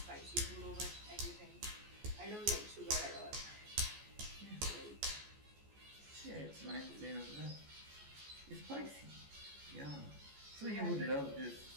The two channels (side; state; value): left; late; 14 ms